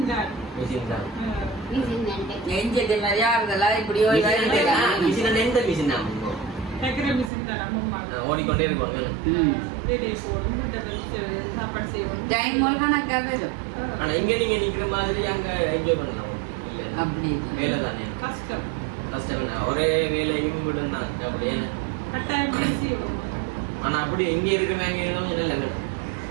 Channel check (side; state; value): left; drops out; at 7.3 s